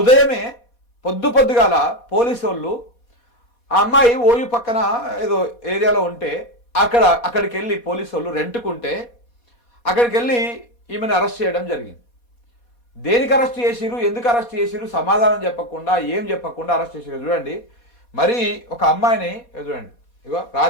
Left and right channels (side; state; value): right; late; 4.2 ms